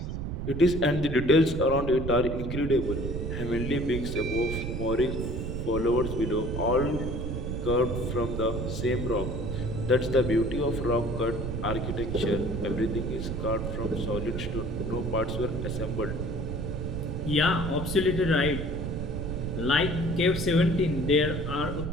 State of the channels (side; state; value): right; noise; rumble, 4 dB below the sound